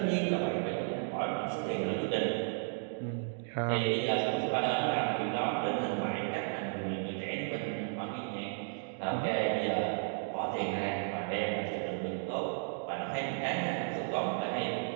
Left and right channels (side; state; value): left; silent; digital silence